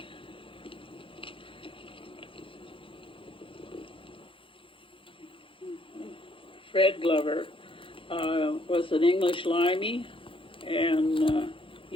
Fred Glover was an English limey, and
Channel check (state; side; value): late; right; 0.25 ms